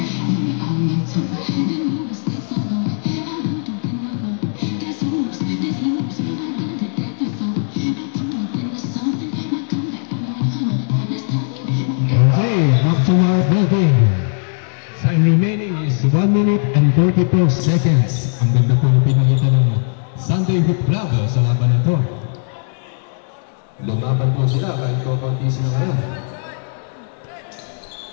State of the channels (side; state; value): right; silent; 66 dB below the other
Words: To our building. Time remaining is 1 minute and 44 seconds. Ang ganda po yung pinakita ng Sunday Hoop Club sa laban na to. Lumaban po sila kahit kukunti sila ngayon.